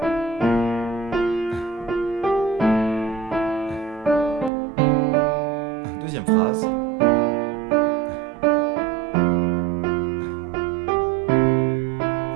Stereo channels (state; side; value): drops out; left; at 4.5 s